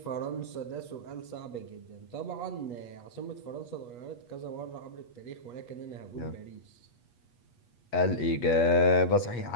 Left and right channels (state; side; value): late; right; 8.3 ms